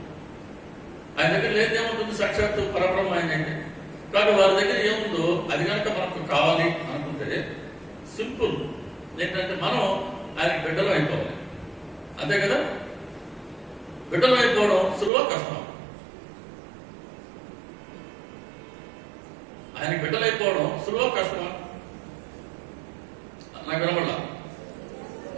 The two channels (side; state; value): left; drops out; at 15.1 s